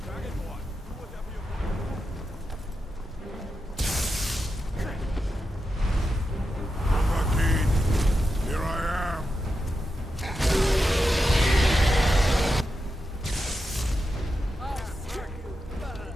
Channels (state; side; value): normal; both; correlation 0.88